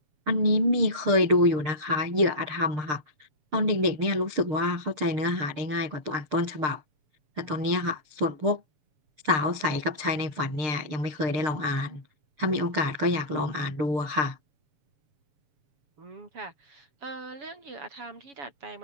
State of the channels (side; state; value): left; late; 6.6 ms